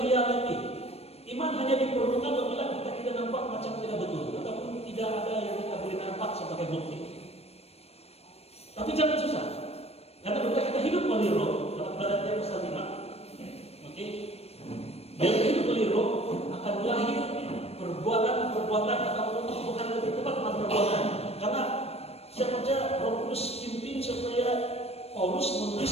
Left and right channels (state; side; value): late; right; 0.29 ms